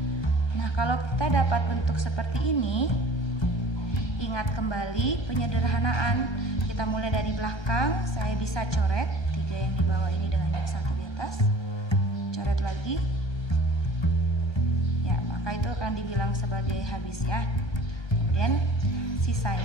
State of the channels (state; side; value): late; right; 1.3 ms